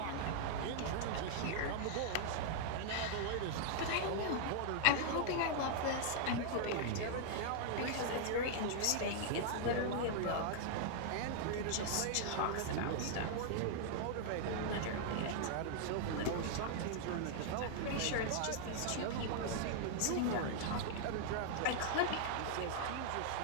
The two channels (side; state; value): both; different; correlation -0.01